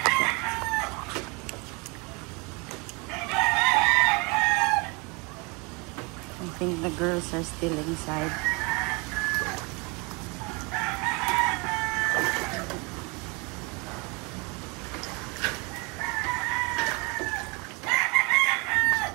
I think the girls are still inside.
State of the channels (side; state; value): left; quieter; 29.4 dB